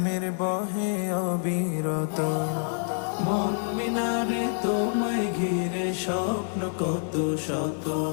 বহে অবিরত। মন মিনারে তোমায় ঘিরে স্বপ্ন কত শত,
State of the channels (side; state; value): right; silent; 60 dB below the other